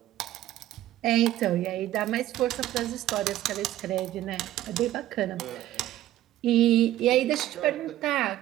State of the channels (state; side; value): quieter; left; 13.9 dB